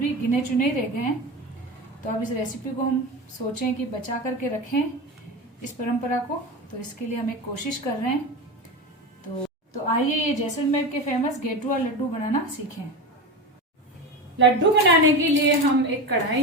गिने चुने ही रह गए हैं। तो अब इस रेसिपी को हम सोचें कि बचा करके रखें इस परंपरा को, तो इसके लिए हम एक कोशिश कर रहे हैं। तो आइए ये जैसलमेर के फेमस गेटुआ लड्डू बनाना सीखें। लड्डू बनाने के लिए हम एक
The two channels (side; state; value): both; normal; correlation 0.23